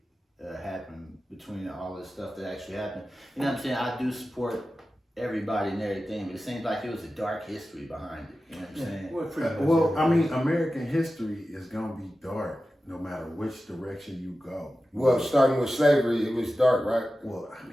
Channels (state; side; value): normal; both; correlation 0.94